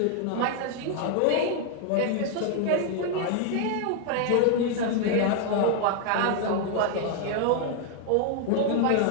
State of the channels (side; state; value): both; different; correlation 0.00